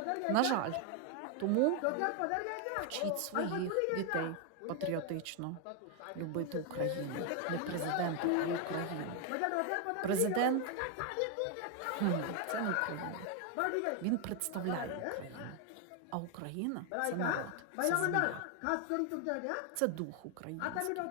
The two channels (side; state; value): both; different; correlation 0.01